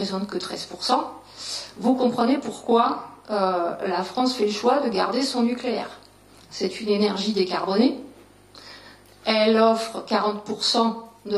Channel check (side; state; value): both; identical; correlation 1.00